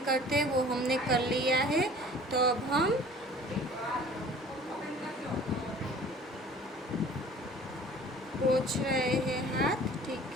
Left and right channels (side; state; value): both; normal; correlation 0.47